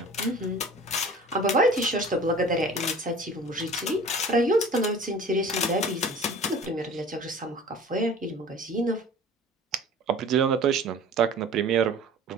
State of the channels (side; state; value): both; normal; correlation 0.44